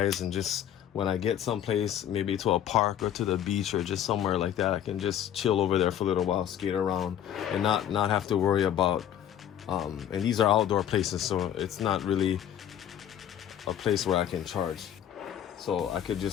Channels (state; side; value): quieter; right; 10.2 dB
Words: just when I get someplace, maybe to a park or to the beach or just somewhere like that, I can just chill over there for a little while, skate around, and not have to worry about and these are outdoor places, so it's not really a place where I can charge. So I could